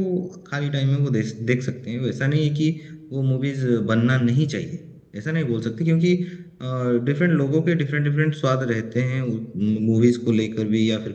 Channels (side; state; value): both; identical; correlation 1.00